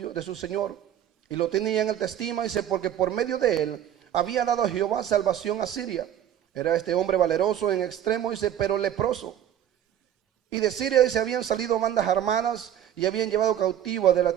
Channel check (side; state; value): left; quieter; 10.6 dB